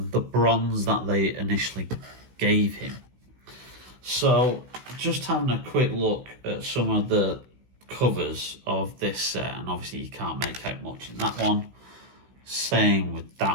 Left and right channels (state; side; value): late; left; 16 ms